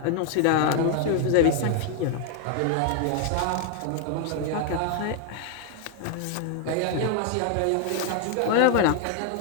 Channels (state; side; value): different; both; correlation 0.00